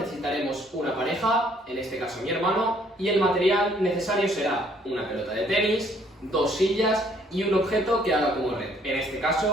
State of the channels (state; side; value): normal; both; correlation 0.64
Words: una pareja, en este caso mi hermano, y el material necesario será una pelota de tenis, 2 sillas y un objeto que haga como red. En este